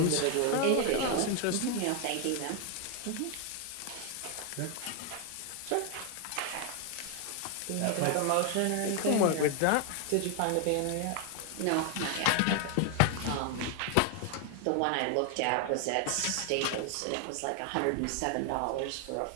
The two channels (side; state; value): both; different; correlation 0.01